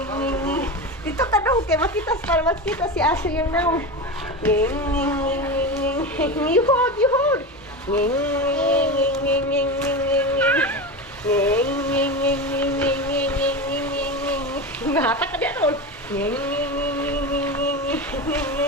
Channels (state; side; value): normal; both; correlation 0.22